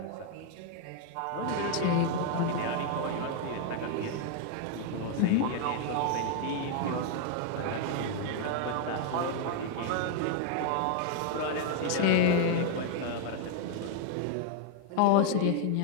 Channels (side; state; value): both; different; correlation 0.00